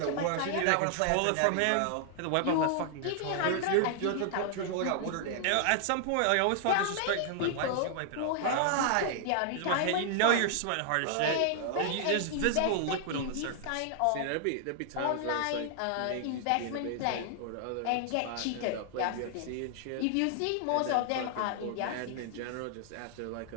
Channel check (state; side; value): different; both; correlation 0.00